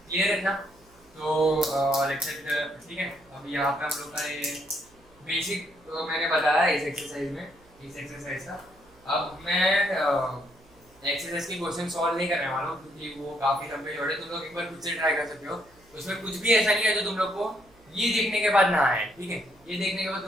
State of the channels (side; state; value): right; noise; hum, 29 dB below the sound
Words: क्लियर है ना। तो लेक्चर, ठीक है। अब यहाँ पे हम लोग का ये बेसिक तो मैंने बताया इस एक्सरसाइज में, इस एक्सरसाइज का। अब मैं एक्सरसाइज के क्वेश्चन सॉल्व नहीं करने वाला हूँ क्योंकि वो काफी लंबे जोड़े, तुम लोग एक बार खुद से ट्राई कर सकते हो। उसमें कुछ भी ऐसा नहीं है जो तुम लोग को ये देखने के बाद ना आए, ठीक है। ये देखने के बाद